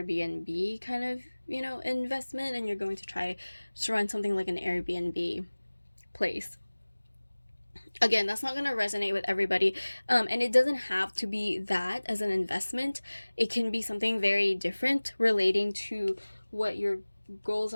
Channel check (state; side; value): inverted; both; correlation -1.00